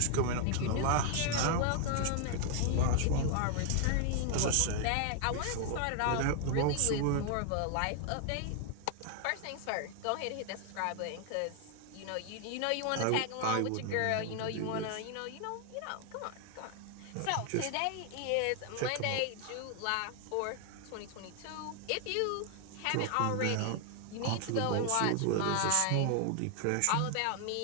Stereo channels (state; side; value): different; both; correlation 0.00